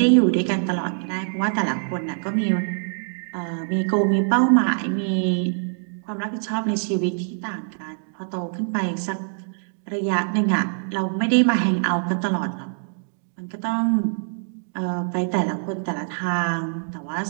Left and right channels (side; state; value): left; silent; digital silence